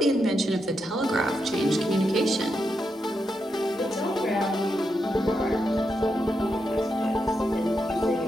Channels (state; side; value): normal; both; correlation 0.84